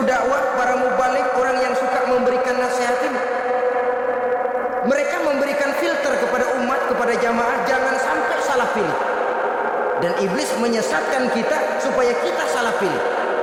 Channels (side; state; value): both; identical; correlation 1.00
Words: dakwah, para mubalik, orang yang suka memberikan nasihat ini, mereka memberikan filter kepada umat, kepada jamaah, jangan sampai salah pilih. Dan iblis menyesatkan kita supaya kita salah pilih.